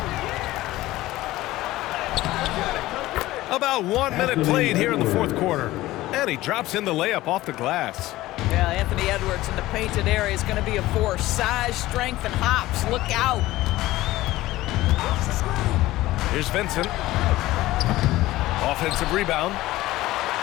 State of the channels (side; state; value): right; quieter; 17.1 dB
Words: About 1 minute played here in the fourth quarter. And he drops in the layup off the glass. Yeah, Anthony Edwards in the painted area is going to be a force. Size, strength, and hops. Look out. Here's Vincent. Offensive rebound.